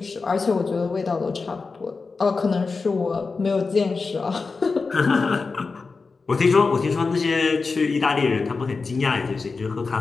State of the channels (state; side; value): quieter; right; 4.3 dB